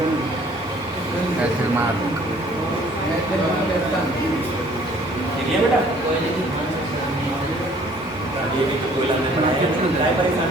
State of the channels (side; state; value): right; noise; rumble, 27 dB below the sound